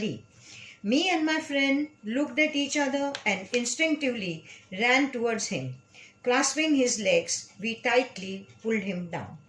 Me and my friend looked at each other and instinctively ran towards him. Clasping his legs, we tightly pulled him down.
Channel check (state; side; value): identical; both; correlation 1.00